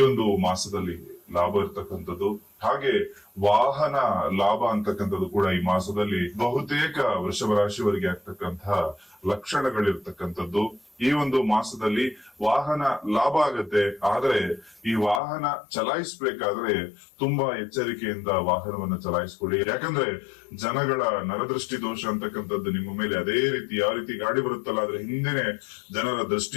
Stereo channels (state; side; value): drops out; right; at 15.2 s